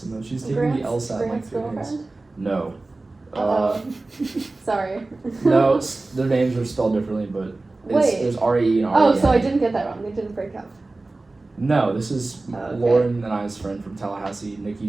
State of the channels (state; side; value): quieter; left; 3.2 dB